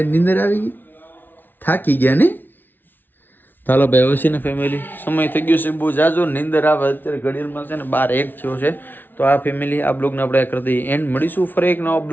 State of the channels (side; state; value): right; late; 0.092 ms